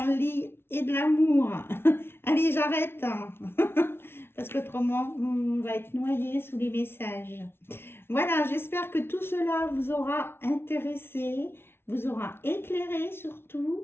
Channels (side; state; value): right; late; 0.12 ms